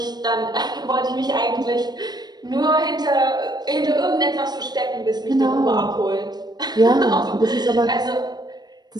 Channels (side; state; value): left; late; 0.20 ms